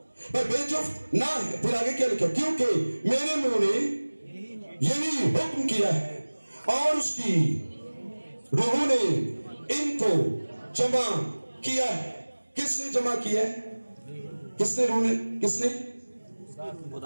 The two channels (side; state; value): both; inverted; correlation -1.00